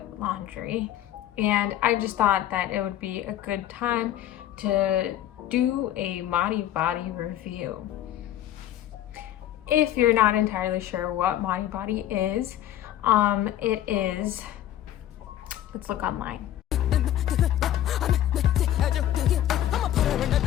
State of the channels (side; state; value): right; quieter; 12.2 dB